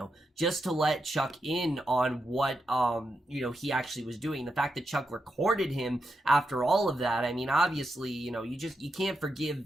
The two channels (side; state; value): both; normal; correlation 0.85